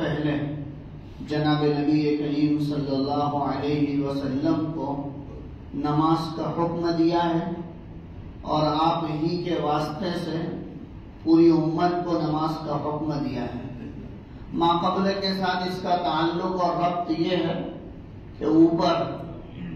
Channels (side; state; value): both; identical; correlation 1.00